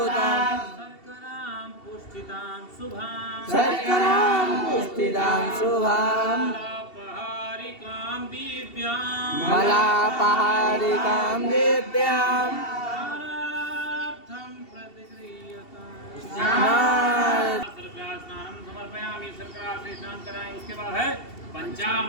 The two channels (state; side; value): late; right; 2.7 ms